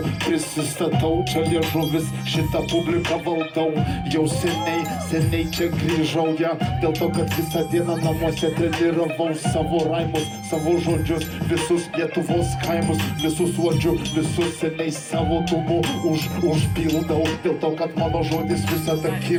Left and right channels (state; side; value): identical; both; correlation 1.00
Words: prisistatau, čia liežuvis, šitą publiką valdau. Jau seniai čia grįžau, ja, dėl to, kad visą dieną namuose treniravau savo raimus, savo žodžius, visus Lietuvos kaimus, visus uodžiu, visus seniai savo tumu užpildau, dėl to, kad mano žodis visada